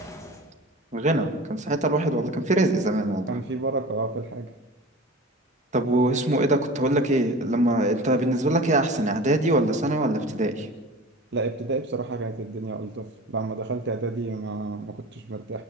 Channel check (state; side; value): normal; both; correlation 0.37